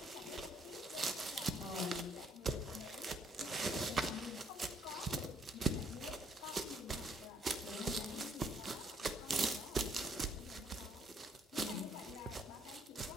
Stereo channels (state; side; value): normal; both; correlation 0.68